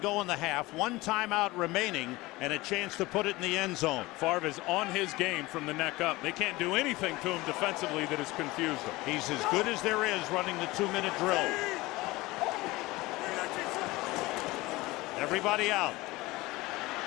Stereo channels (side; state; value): right; quieter; 20.6 dB